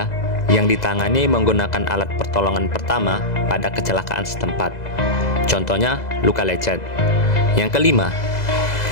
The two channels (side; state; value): right; late; 2.0 ms